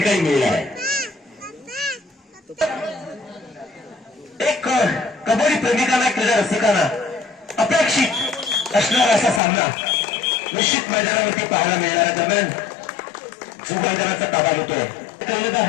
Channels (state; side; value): drops out; right; at 9.4 s